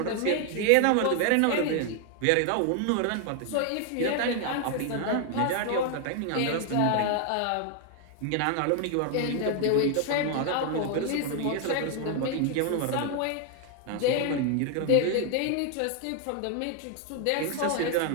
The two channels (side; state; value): both; different; correlation 0.00